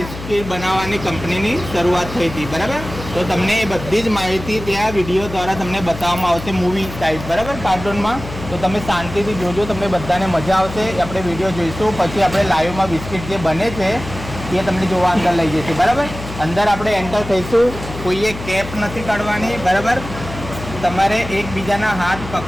બનાવવાની કંપનીની શરૂઆત થઈ હતી, બરાબર. તો તમને એ બધી જ માહિતી ત્યાં વિડીયો દ્વારા તમને બતાવવામાં આવશે મૂવી ટાઈપ, બરાબર, કાર્ટૂનમાં. તો તમે શાંતિથી જોજો, તમને બધાને મજા આવશે. આપણે વિડીયો જોઈશું, પછી આપણે લાઈવમાં બિસ્કિટ જે બને છે એ તમને જોવા અંદર લઈ જશે, બરાબર. અંદર આપણે એન્ટર થઈશું, કોઈએ કેપ નથી કાઢવાની, બરાબર. તમારે એકબીજાના હાથ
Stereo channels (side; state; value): left; noise; hum, 11 dB below the sound